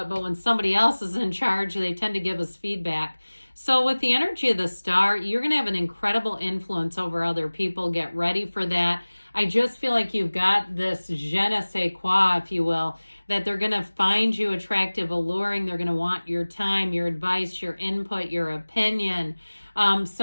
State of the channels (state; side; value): inverted; both; correlation -1.00